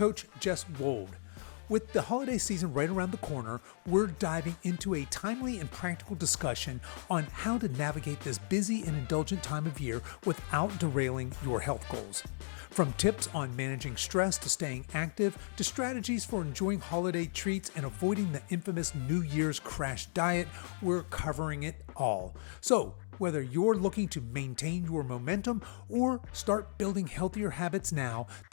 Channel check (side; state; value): right; silent; digital silence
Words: Jess Wold. With the holiday season right around the corner, we're diving into a timely and practical discussion on how to navigate this busy and indulgent time of year without derailing your health goals. From tips on managing stress to staying active, to strategies for enjoying holiday treats and avoiding the infamous New Year's crash diet, we're covering it all. So, whether you're looking to maintain your momentum or start building healthier habits now,